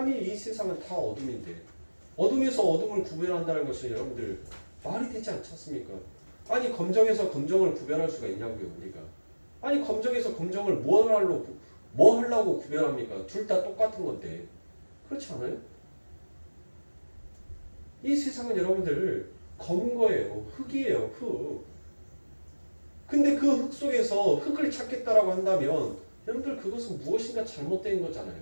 이 세상은 다 어둠인데 어둠에서 어둠을 구별한다는 것은 여러분들 말이 되지 않지 않습니까? 아니 검정에서 검정을 구별할 수가 있냐고요 우리가. 아니 검정에서 검정을 뭐 하려고 구별합니까? 둘 다 똑같은 건데 그렇지 않아요? 이 세상은 여러분들 검은 거예요. 흙이에요. 흙. 근데 그 흙 속에서 흙을 찾겠다라고 한다면 여러분들 그것은 무엇인가 잘못된 거잖아요.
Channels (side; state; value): both; inverted; correlation -1.00